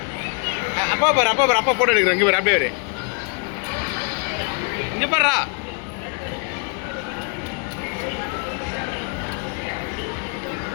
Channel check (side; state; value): right; quieter; 35.9 dB